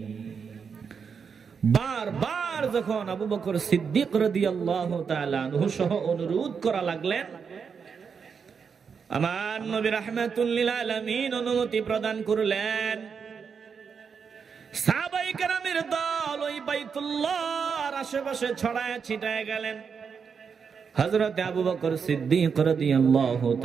বারবার যখন আবু বকর সিদ্দিক রাদিয়াল্লাহু তাআলা আনহু সহ অনুরোধ করা লাগলেন, আমার নবী রাহমাতুল লিল আলামিন অনুমতি প্রদান করলেন। সাহাবায়ে কেরামের দল ওই বাইতুল্লাহর আশেপাশে ছড়ায় ছিটায় গেলেন। হযরত আবু বকর সিদ্দিক রাদিয়াল্লাহু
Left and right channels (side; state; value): left; quieter; 6.2 dB